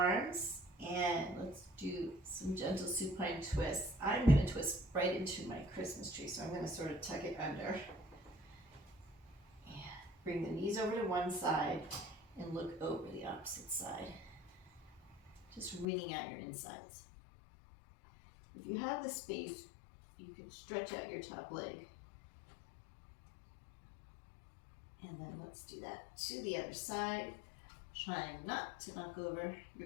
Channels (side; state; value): right; drops out; at 15.9 s